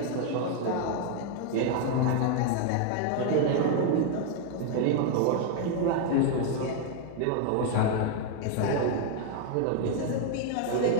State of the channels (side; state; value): both; different; correlation 0.00